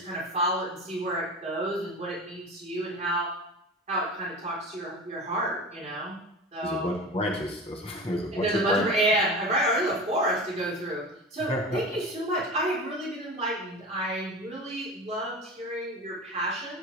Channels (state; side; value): normal; both; correlation 0.32